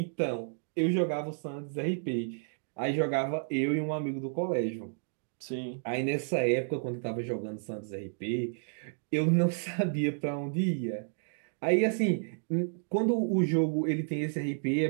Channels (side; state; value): left; silent; digital silence